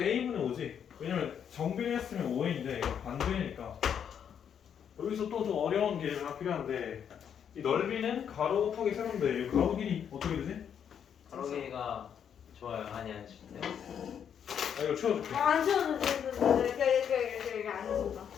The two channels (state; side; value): quieter; right; 8.3 dB